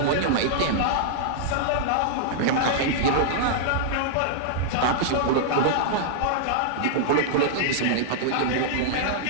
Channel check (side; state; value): both; different; correlation -0.01